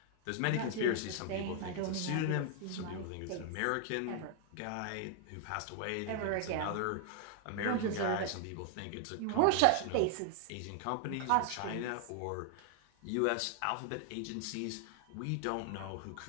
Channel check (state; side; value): different; both; correlation 0.00